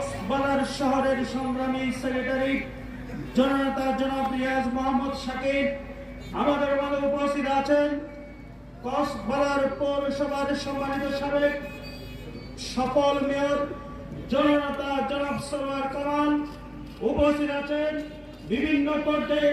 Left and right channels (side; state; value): both; identical; correlation 1.00